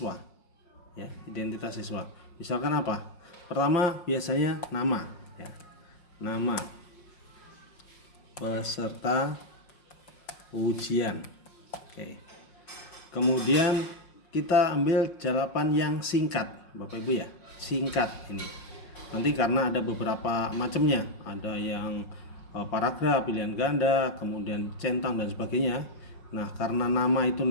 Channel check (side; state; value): right; late; 5.6 ms